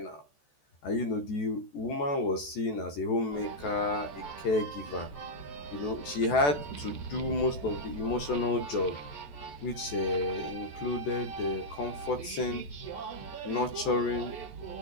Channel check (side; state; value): right; late; 14 ms